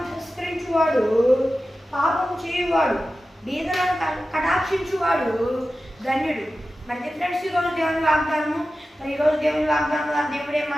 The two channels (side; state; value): both; normal; correlation 0.94